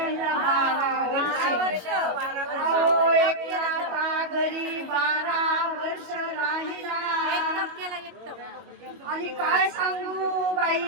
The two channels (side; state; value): left; late; 22 ms